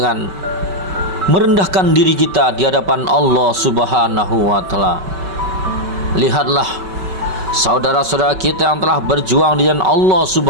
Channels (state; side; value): late; left; 5.3 ms